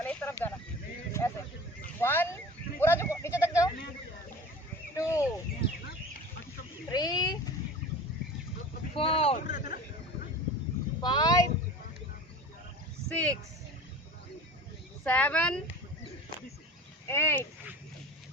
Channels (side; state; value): both; normal; correlation 0.37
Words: इस तरफ जाना, ऐसे 1 पूरा झुको, नीचे तक जाओ, 2 3 4 5 6 7 8